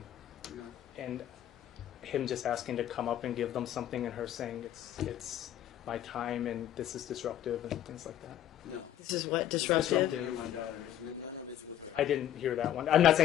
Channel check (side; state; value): right; quieter; 11.4 dB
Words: him just asking to come up and give them something, and her saying it's my time and this is disruptive and things like that. No. This is what disruptive. Me and my daughter. None of it's with her. I didn't hear that one. I'm not